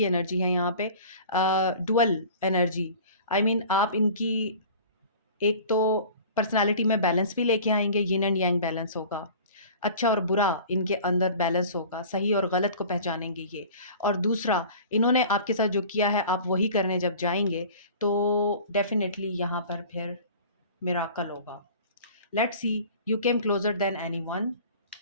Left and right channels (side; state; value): both; inverted; correlation -0.42